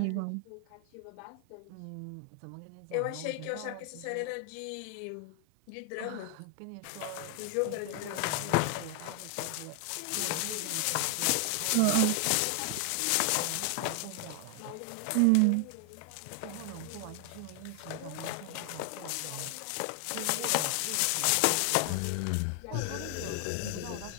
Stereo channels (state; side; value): different; both; correlation 0.00